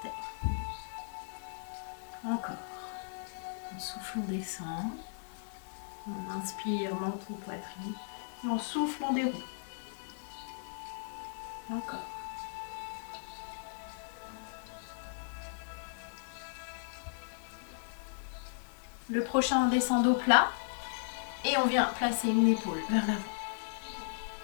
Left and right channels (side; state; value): right; silent; digital silence